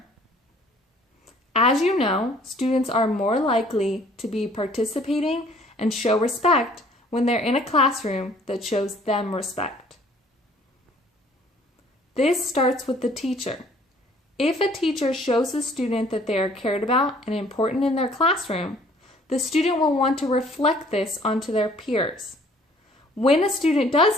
As you know, students are more likely to be participating and show respect when they're in a classroom that shows them respect. This starts with the teacher. If a teacher shows a student that they are cared about and important in their classroom, the student will want to reflect this onto their peers. When a student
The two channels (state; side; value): normal; both; correlation 0.57